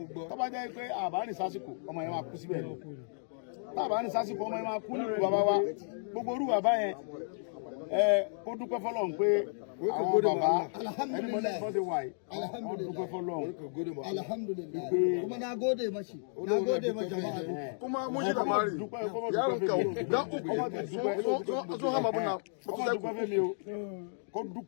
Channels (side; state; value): right; silent; digital silence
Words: tó bá jẹ́ pé àbá ní sásìkò ọmọ yẹn máa kú síbẹ̀ lọ tábà ní sásìkò ọmọ yẹn máa kú nílùú bàbá wa gbogbo orú bàbá yẹn kó dúpẹ́ fọlọ́run pé àwọn bàbá ẹni mọ́ lẹ́yìn fọ́dé wáyé wọ́n dúpẹ́ fọlọ́run alhamdulillah kuma na gode mashi jama'a kuma mun shi da mari yaron ka da uku sun hama buna kó